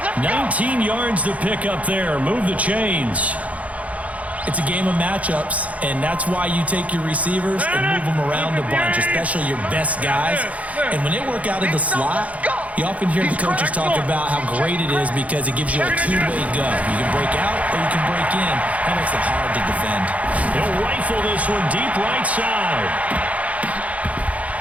19 yards to pick up there. Move the chains. It's a game of matchups, and that's why you take your receivers and move them around a bunch, especially your best guys. And when they work out of the slot, You often hear the coaches talk about how great it is because it gives you a two-way go. You can break out or you can break in. That makes it hard to defend. He'll rifle this one deep right side.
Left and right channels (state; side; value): late; left; 0.068 ms